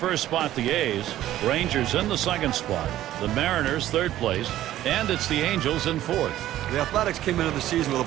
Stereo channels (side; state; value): left; quieter; 13.6 dB